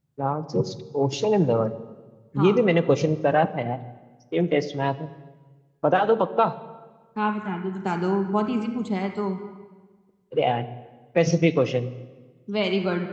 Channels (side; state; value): both; identical; correlation 1.00